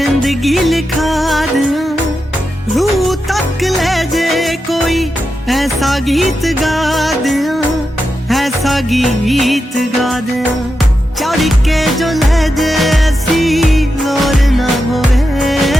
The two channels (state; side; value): normal; both; correlation 0.88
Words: लिखा दिया रूह तक ले जे कोई ऐसा गीत गा दिया ऐसा गीत गा दिया चढ़ के जो ले जे ऐसी लोर ना होवे